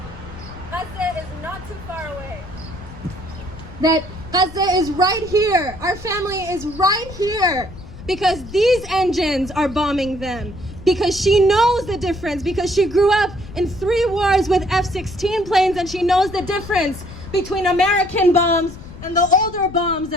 Gaza is not too far away. That Gaza is right here. Our family is right here because these engines are bombing them. Because she knows the difference, because she grew up in 3 wars with F-16 planes and she knows the difference between American bombs and the older bombs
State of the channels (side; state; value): left; noise; rumble, 15 dB below the sound